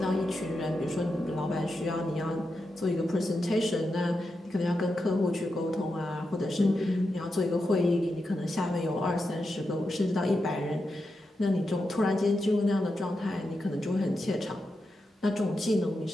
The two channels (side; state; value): both; normal; correlation 0.88